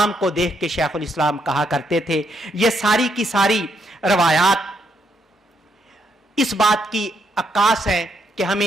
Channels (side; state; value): both; normal; correlation 0.76